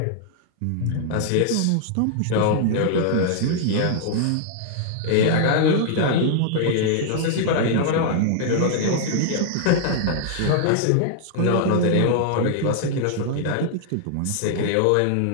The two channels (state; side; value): different; both; correlation -0.01